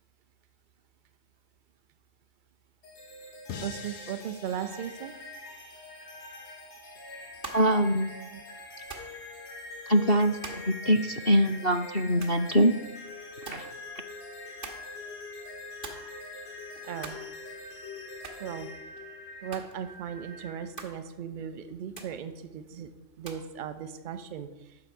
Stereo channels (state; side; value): late; right; 2.5 ms